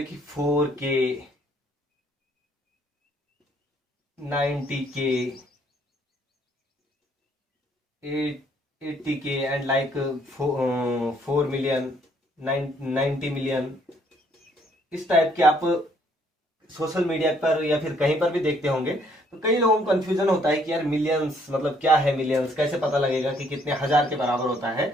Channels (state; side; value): normal; both; correlation 0.66